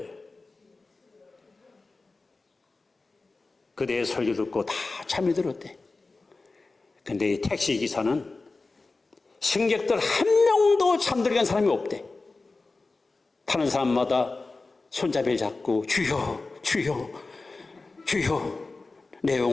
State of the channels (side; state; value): right; quieter; 3.6 dB